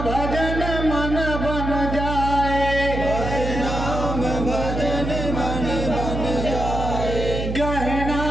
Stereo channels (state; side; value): noise; right; hum, 4 dB below the sound